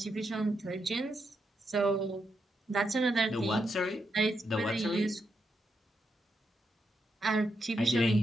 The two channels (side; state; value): both; normal; correlation 0.82